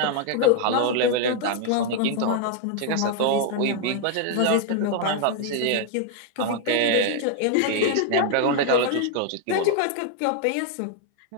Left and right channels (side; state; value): both; different; correlation 0.00